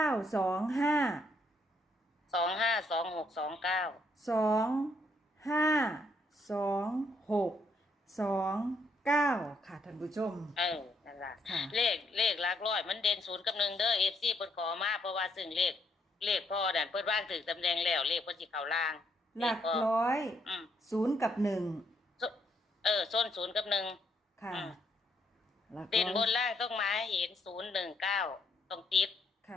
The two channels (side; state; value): both; normal; correlation 0.73